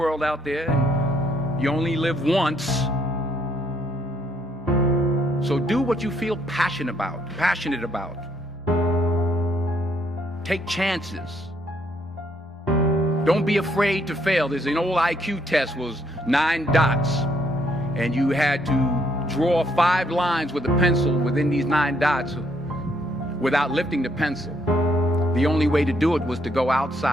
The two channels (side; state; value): both; normal; correlation 0.70